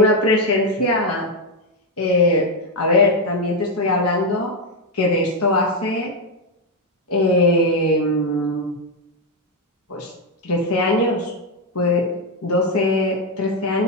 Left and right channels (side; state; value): both; normal; correlation 0.03